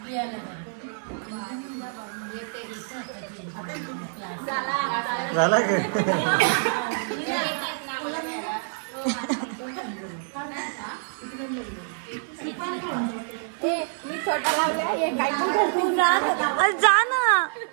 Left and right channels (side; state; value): left; silent; digital silence